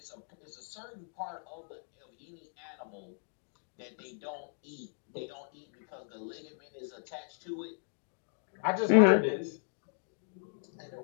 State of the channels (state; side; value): silent; right; digital silence